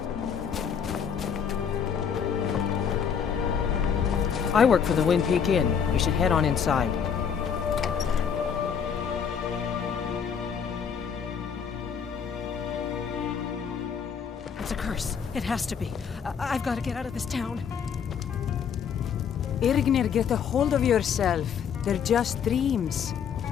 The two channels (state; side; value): quieter; right; 7.3 dB